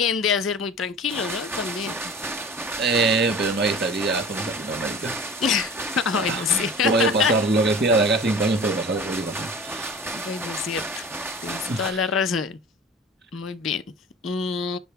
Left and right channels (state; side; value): normal; both; correlation 0.40